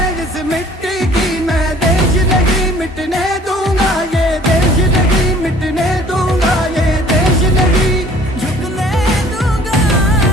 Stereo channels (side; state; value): both; normal; correlation 0.53